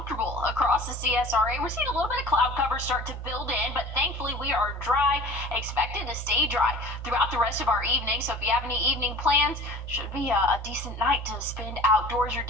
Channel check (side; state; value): both; normal; correlation 0.42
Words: across the CSRA. We're seeing a little bit of cloud cover start to build in, but thankfully we are dry, expected to stay dry throughout the rest of our evening. So if you have any evening plans, should be a decent night to spend outdoors. You're